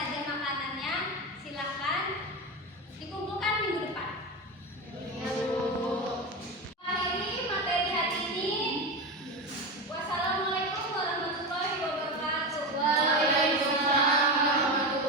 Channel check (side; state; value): both; normal; correlation 0.19